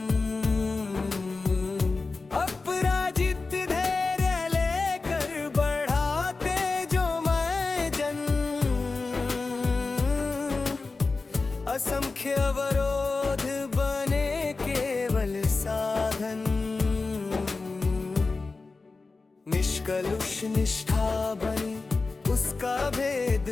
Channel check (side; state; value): right; quieter; 3.9 dB